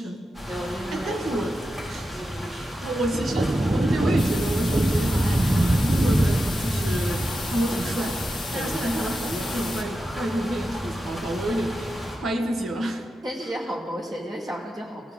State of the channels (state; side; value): normal; both; correlation 0.90